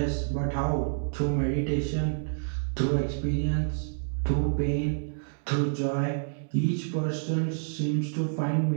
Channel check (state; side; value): silent; left; digital silence